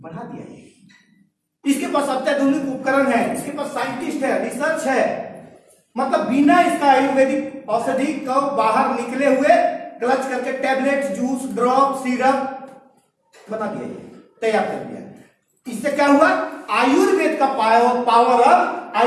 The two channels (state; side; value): identical; both; correlation 1.00